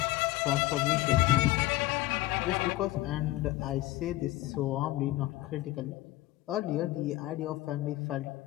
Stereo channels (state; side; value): quieter; right; 16.6 dB